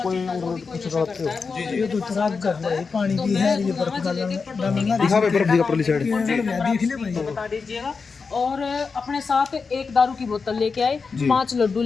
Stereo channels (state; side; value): quieter; right; 4.9 dB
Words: कोई कुछ करते हो? जी ये तो खराब कर रहा है, पानी भी है, ये बर्फ डालूंगा दिखा भाई बर्फ दिखा परली साइड। देख ले भाई। बता दीजिएगा। और अपने साथ एक दारू की बोतल लेके आए, 5 लड्डू